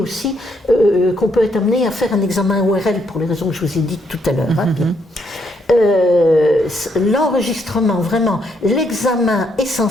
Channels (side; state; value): both; normal; correlation 0.74